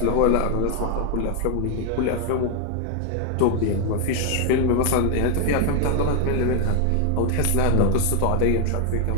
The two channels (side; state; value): both; different; correlation 0.00